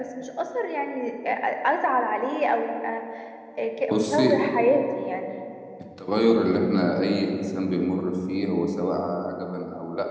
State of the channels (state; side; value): identical; both; correlation 1.00